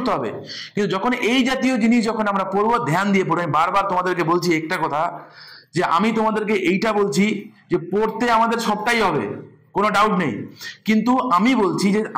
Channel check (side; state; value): both; identical; correlation 1.00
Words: হবে, কিন্তু যখন এই জাতীয় জিনিস যখন আমরা পড়বো, ধ্যান দিয়ে পড়বো। আমি বারবার তোমাদেরকে বলছি একটা কথা, যে আমি তোমাদেরকে এইটা বলছি যে পড়তে আমাদের সবটাই হবে, কোনো ডাউট নেই, কিন্তু আমি বলছি যে